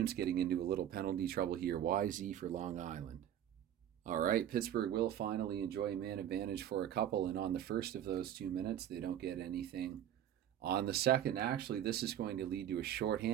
getting into a little penalty trouble here. YZ for Long Island. All right, Pittsburgh will finally enjoy man advantage for a couple, and on the first of those 2 minutes, they don't get anything. On the second, actually, this is going to lead to a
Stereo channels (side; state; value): left; quieter; 10.7 dB